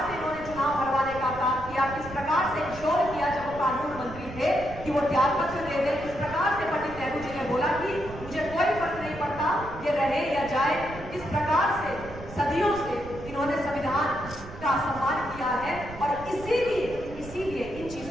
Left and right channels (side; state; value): right; noise; rumble, 14 dB below the sound